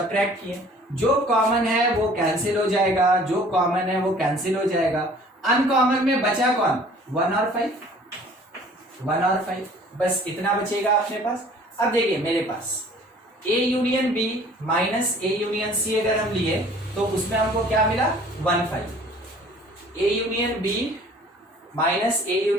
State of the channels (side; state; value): both; normal; correlation 0.52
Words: किए। जो कॉमन है वो कैंसिल हो जाएगा, जो कॉमन है वो कैंसिल हो जाएगा। अनकॉमन में बचा कौन, 1 और 5, 1 और 5, बस इतना बचेगा अपने पास। अब देखिए मेरे पास A union B minus A union C अगर हम लिए तो उसमें हमको क्या मिला, 1 5। A union B minus A